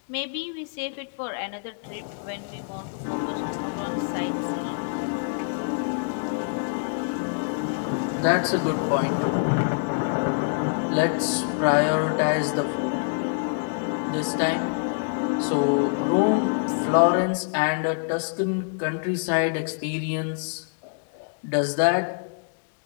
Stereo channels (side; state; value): right; silent; digital silence